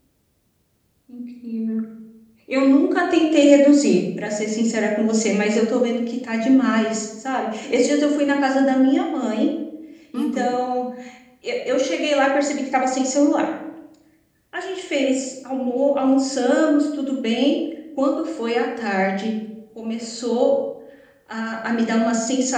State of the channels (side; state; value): both; identical; correlation 1.00